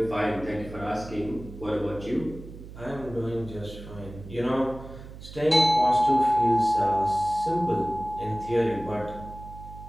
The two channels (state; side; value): noise; right; hum, 14 dB below the sound